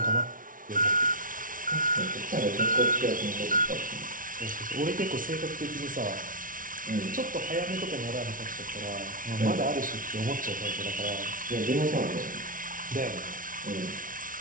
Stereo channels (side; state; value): left; late; 0.39 ms